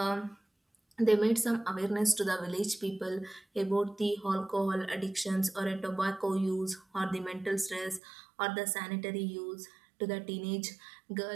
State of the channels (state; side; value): drops out; left; at 8.0 s